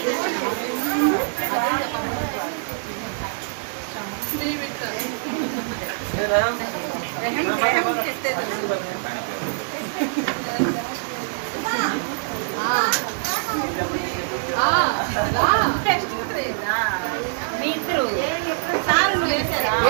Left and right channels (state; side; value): silent; left; digital silence